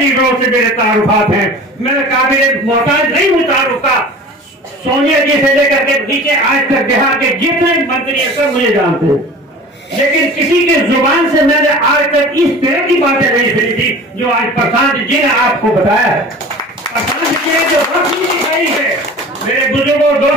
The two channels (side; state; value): both; normal; correlation 0.40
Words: से मेरे तारुफात हैं। मेरे काबिल मोहताज नहीं हूँ तारुफ का। सोनिया जी से लेकर के नीचे आज तक बिहार के जितने मंत्री हैं सब मुझे जानते हैं, लेकिन किसी के जुबान से मैंने आज तक इस तरह की बातें नहीं सुनी थी जो आज प्रशांत जी ने आपको बताया है। प्रशांत जी ने जो रोशनी दिखाई है, मेरे बुजुर्गों